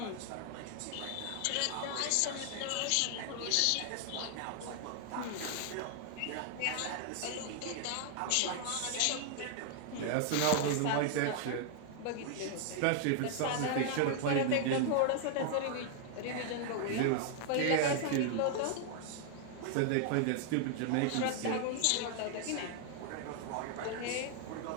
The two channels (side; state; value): both; different; correlation 0.00